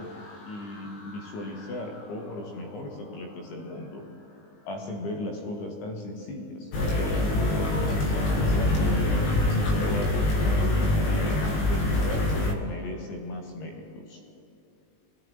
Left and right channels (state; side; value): late; right; 19 ms